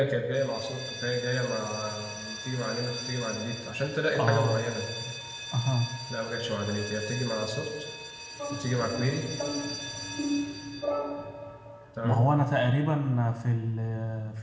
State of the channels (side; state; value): both; identical; correlation 1.00